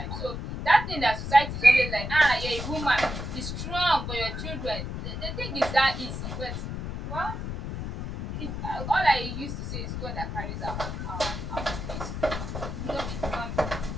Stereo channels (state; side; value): noise; left; rumble, 5 dB below the sound